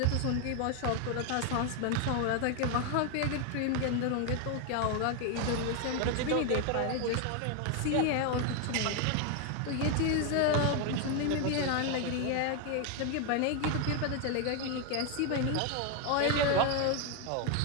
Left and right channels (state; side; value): different; both; correlation 0.01